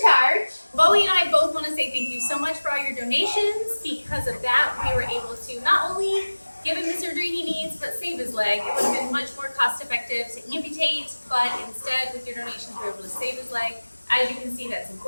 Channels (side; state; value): both; inverted; correlation -1.00